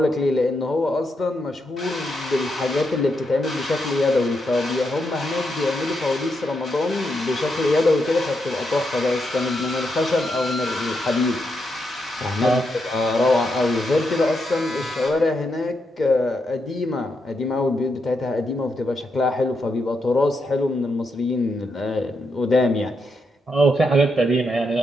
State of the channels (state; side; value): normal; both; correlation 0.82